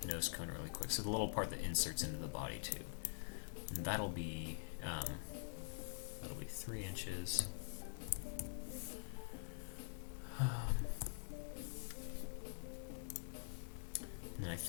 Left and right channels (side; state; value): right; silent; digital silence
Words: nose cone really quick. So the little part that inserts into the body tube, and that'll be 3 inches. And I